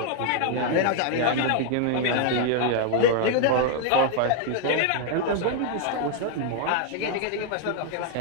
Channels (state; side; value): different; both; correlation 0.00